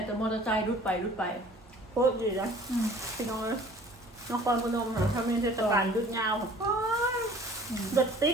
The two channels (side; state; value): both; normal; correlation 0.49